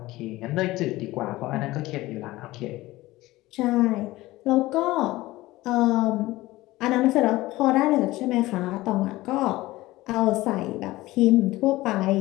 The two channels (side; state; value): right; quieter; 18.3 dB